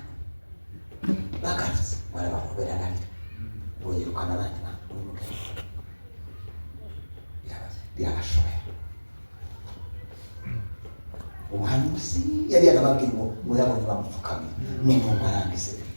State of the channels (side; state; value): both; inverted; correlation -1.00